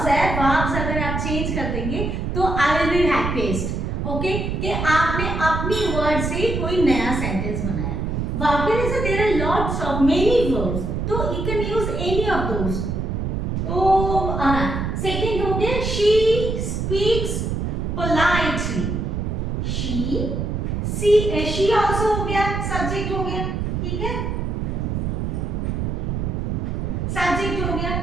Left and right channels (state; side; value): noise; right; rumble, 1 dB below the sound